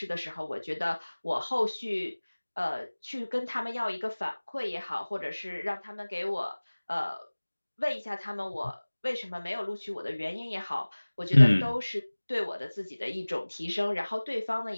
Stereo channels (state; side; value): inverted; both; correlation -1.00